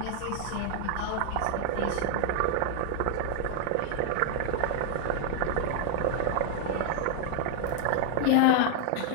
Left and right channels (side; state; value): both; different; correlation 0.00